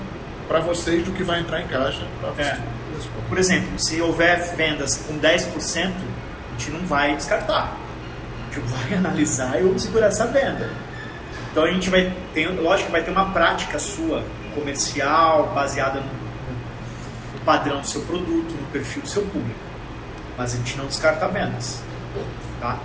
para vocês do que vai entrar em caixa? Por exemplo, se houver vendas com 10%, a gente não vai descartar. A gente vai analisar e vamos segurar essa venda. Então a gente vai ter, lógico que vai ter uma prática sua comercial baseada no padrão do seu produto, no perfil do seu público. Mas a gente não descarta vendas. Tá?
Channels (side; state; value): both; identical; correlation 1.00